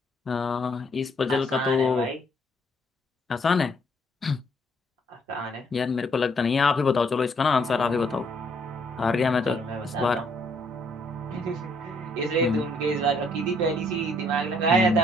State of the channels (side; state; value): both; normal; correlation 0.68